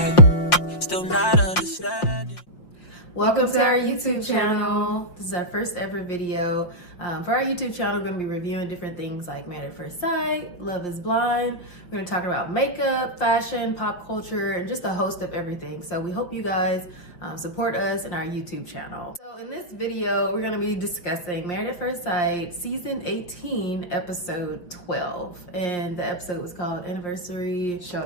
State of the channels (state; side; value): late; right; 5.6 ms